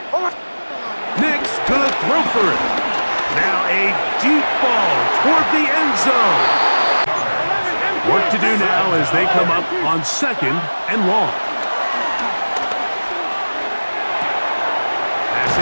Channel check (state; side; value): inverted; both; correlation -1.00